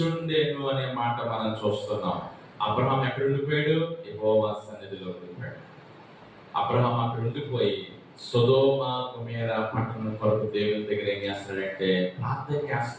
అనే మాట మనం చూస్తున్నాం. అబ్రహాము ఎక్కడ ఉండిపోయాడు? యెహోవా సన్నిధిలో ఉండిపోయాడు. అబ్రహాము అక్కడ ఉండిపోయి సొదొమ గొమొర్రా పట్టణం కొరకు దేవుని దగ్గర ఏం చేస్తున్నాడంటే ప్రార్థన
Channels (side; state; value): both; identical; correlation 1.00